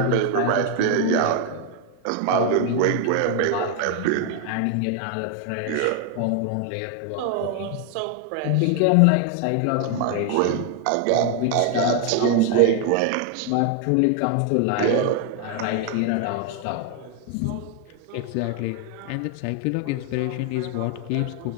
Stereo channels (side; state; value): both; different; correlation 0.01